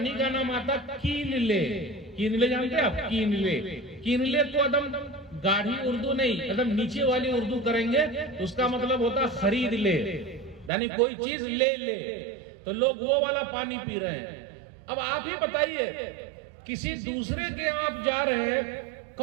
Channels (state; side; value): drops out; left; at 10.7 s